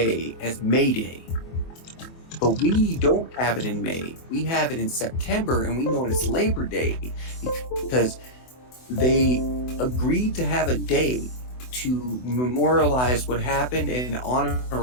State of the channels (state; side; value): late; right; 24 ms